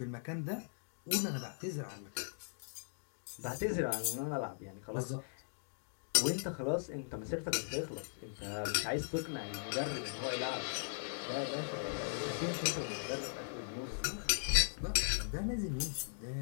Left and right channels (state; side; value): silent; right; digital silence